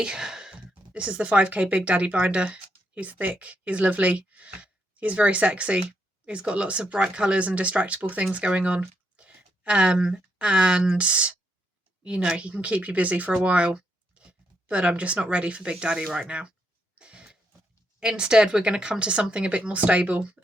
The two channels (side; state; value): both; normal; correlation 0.78